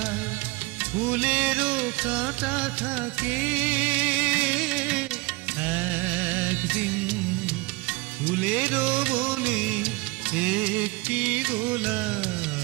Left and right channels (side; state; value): left; quieter; 24.6 dB